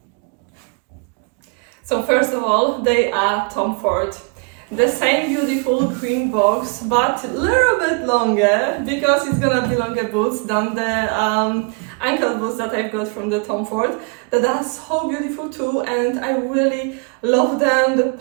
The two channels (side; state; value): left; quieter; 34.9 dB